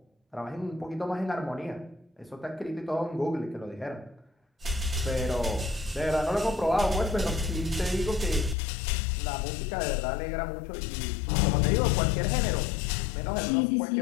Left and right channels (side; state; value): right; drops out; at 8.6 s